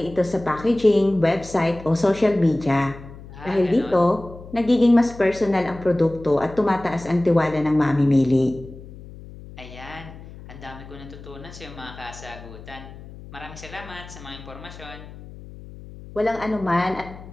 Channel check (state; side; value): noise; left; hum, 16 dB below the sound